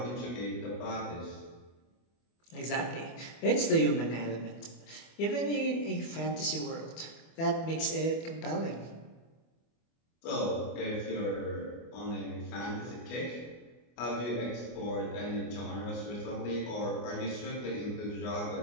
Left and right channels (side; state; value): right; late; 24 ms